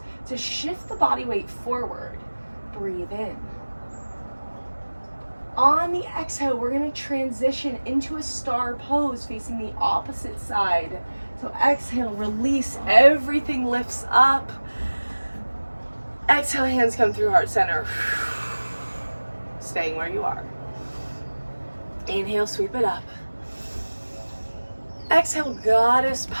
to shift the body weight forward. Breathe in. On the exhale, we're going to transition into a star pose facing the opposite side. So exhale, release, everything lifts up. Exhale, hands come through heart center. Staying where you are. Inhale, sweep it up. Exhale, goddess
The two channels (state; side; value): inverted; both; correlation -1.00